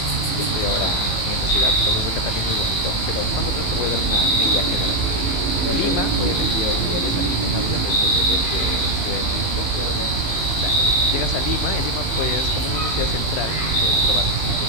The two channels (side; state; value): right; late; 18 ms